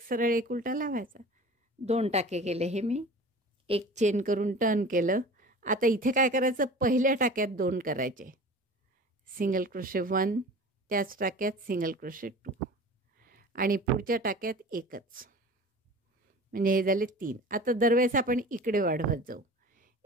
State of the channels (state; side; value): normal; both; correlation 0.39